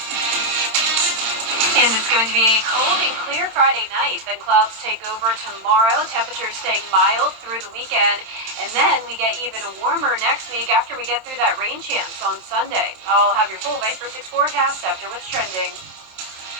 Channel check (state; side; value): late; left; 27 ms